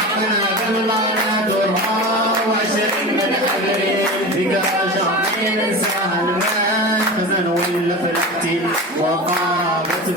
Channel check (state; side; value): normal; both; correlation 0.29